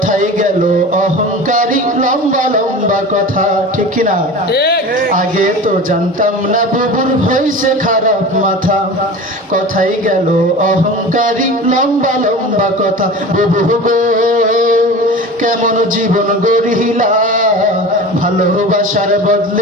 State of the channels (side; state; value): both; normal; correlation 0.34